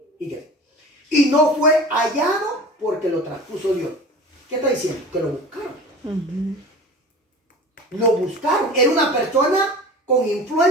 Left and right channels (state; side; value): normal; both; correlation 0.38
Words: Y no fue hallado porque lo traspuso Dios. ¿Qué está diciendo? Que lo buscaron. Lo buscaron. Era una persona con